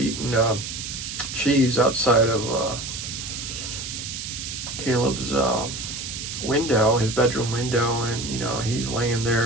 cheese outside of Caleb's window, his bedroom window, and you know he's laying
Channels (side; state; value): right; noise; hiss, 7 dB below the sound